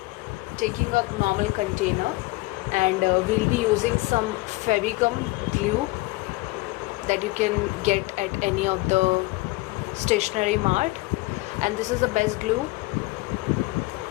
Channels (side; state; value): right; quieter; 21.8 dB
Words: taking a normal container, and we'll be using some Fevicum glue that you can get at any of the stationery mart, and this is the best glue